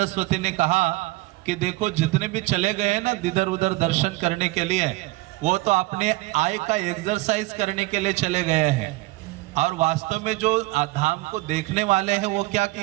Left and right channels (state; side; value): quieter; left; 21.0 dB